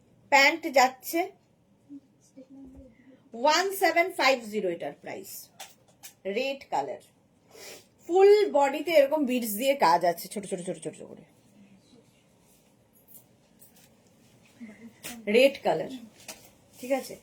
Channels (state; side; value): identical; both; correlation 1.00